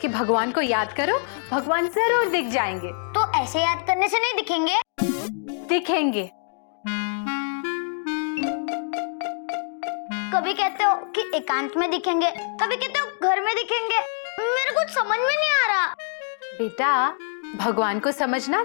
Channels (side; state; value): right; silent; digital silence